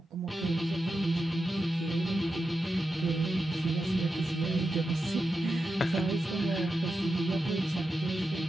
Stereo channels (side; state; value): both; normal; correlation 0.89